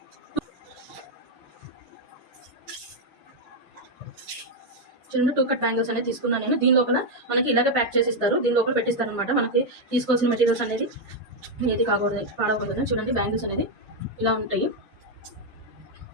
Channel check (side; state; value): both; normal; correlation 0.02